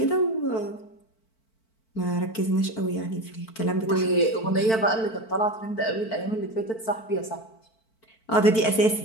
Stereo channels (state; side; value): late; right; 4.5 ms